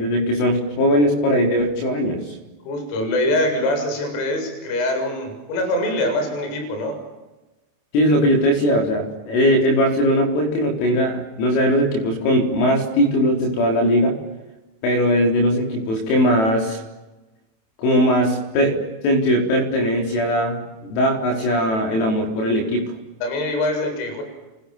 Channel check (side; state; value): right; late; 27 ms